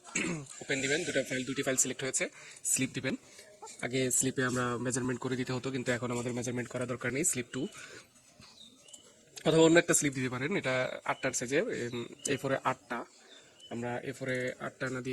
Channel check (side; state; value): both; identical; correlation 1.00